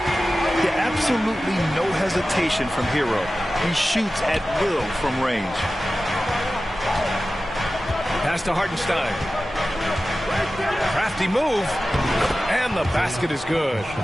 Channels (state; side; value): normal; both; correlation 0.95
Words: Yeah, absolutely no hesitation from Hero. He shoots at will from range. Pass to Hartenstein. Crafty move. And the basket is good.